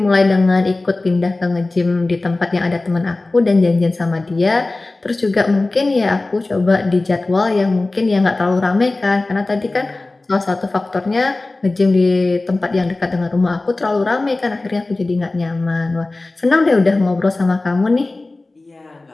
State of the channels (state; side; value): quieter; right; 3.1 dB